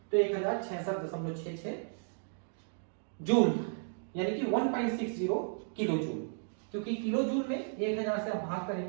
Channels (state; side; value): silent; left; digital silence